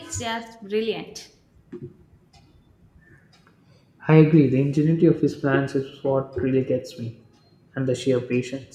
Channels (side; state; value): both; identical; correlation 1.00